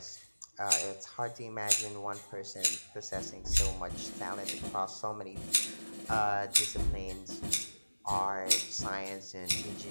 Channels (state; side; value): inverted; both; correlation -1.00